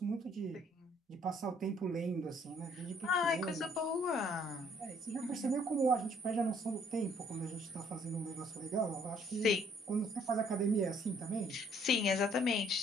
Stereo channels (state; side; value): normal; both; correlation 0.63